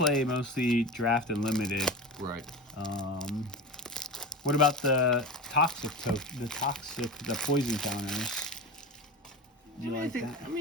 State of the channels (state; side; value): normal; both; correlation 0.27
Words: mostly draft and limited. Right. What about the poison counters? Do you like that? I